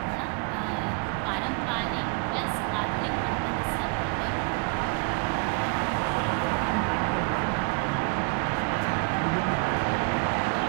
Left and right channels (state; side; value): quieter; left; 32.4 dB